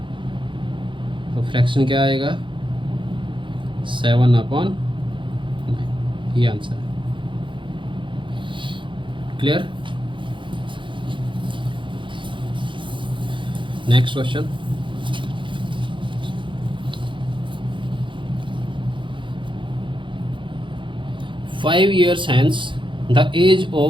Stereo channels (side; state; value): left; late; 0.24 ms